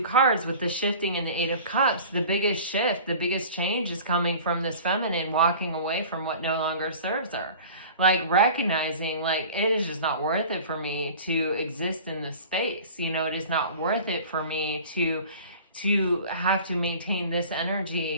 cards, with the shifting and the Eight of Cups, the biggest shift, the biggest change is coming from this feminine walking away from what no longer serves her. Like recognizing, like, it is just not worth it for me to exist in this space. It is not worth it for me to have to maintain this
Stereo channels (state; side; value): inverted; both; correlation -0.41